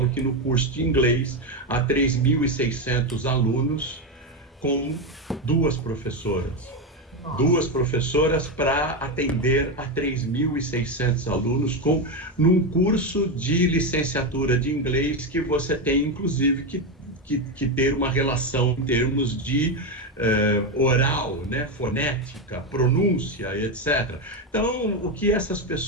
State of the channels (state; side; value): normal; both; correlation 0.11